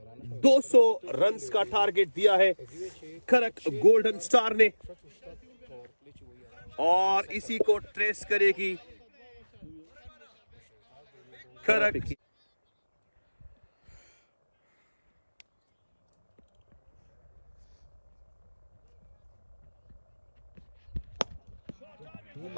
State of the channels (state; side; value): inverted; both; correlation -1.00